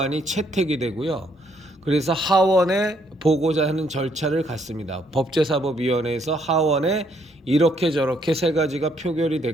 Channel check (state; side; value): normal; both; correlation 0.70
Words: 채택이 되고요. 그래서 하원에 보고자 하는 절차를 갖습니다. 법제사법위원회에서 하원에 이렇게 저렇게 3가지가 표결이